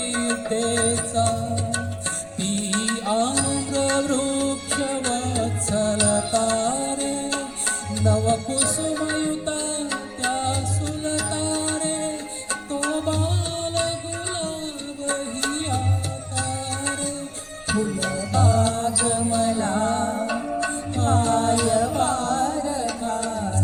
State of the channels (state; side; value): identical; both; correlation 1.00